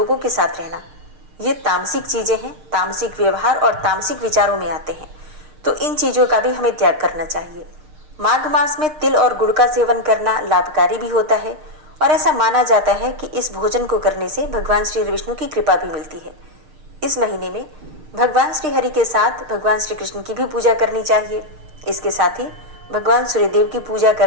के साथ रहना, ये तामसिक चीज़ें हैं, तामसिक व्यवहार और तामसिक विचारों में आते हैं। तो इन चीज़ों का भी हमें त्याग करना चाहिए। माघ मास में तिल और गुड़ का सेवन करना लाभकारी भी होता है और ऐसा माना जाता है कि इस भोजन को करने से भगवान श्री विष्णु की कृपा भी मिलती है। इस महीने में भगवान श्री हरि के साथ भगवान श्री कृष्ण की भी पूजा करनी चाहिए। इसके साथ ही भगवान सूर्यदेव की पूजा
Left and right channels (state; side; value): late; left; 6.6 ms